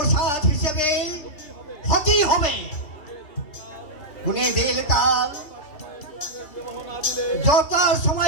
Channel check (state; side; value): late; right; 3.3 ms